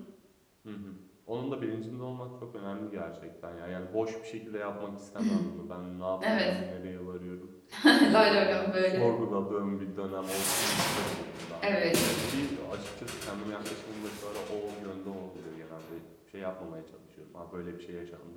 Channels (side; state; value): both; identical; correlation 1.00